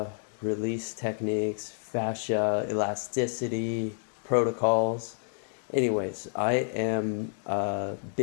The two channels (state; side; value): silent; right; 56 dB below the other